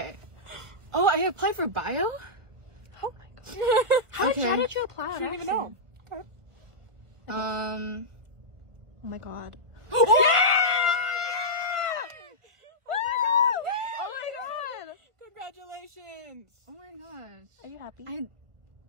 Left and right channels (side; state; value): left; late; 1.4 ms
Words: Oh, I applied for bio? Oh my god. How did you apply? I don't even know. Oh my god. Oh my god! Congratulations! Oh my gosh. Are you happy?